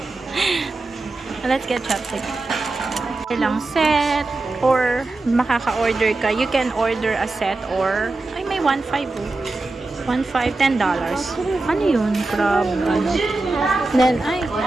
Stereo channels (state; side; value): quieter; left; 3.2 dB